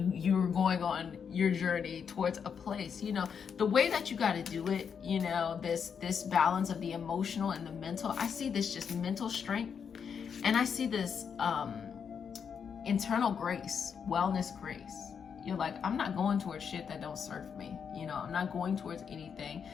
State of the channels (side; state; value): right; quieter; 6.9 dB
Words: going on your journey towards a place. You know, the way that you got to do it, you know, this balance of the emotional and the mental. I see this just mental strength, and I see this internal grace, wellness grace. You're like, I'm not going towards shit that don't serve me. You know, I'm not going towards anything